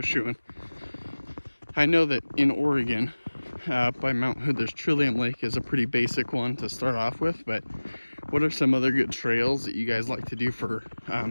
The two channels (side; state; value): both; inverted; correlation -1.00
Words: I know that in Oregon, by Mount Hood, there's Trillium Lake is a pretty basic one to start off with, but what are some other good trails that you guys like to do for